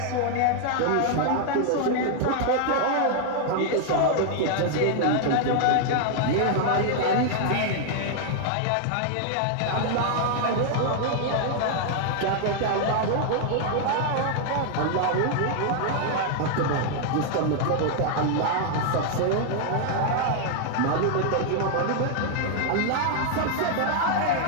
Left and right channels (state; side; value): different; both; correlation 0.00